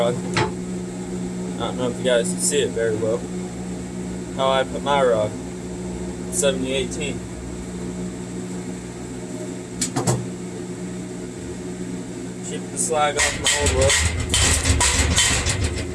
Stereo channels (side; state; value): both; identical; correlation 1.00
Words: I don't know if you guys can see it very well. How I put my rod, 7018. Chip the slag off my old weld.